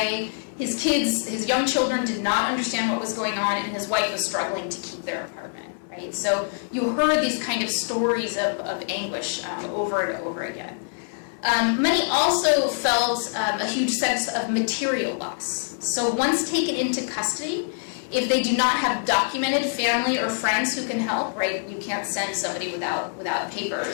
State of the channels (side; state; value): right; silent; 60 dB below the other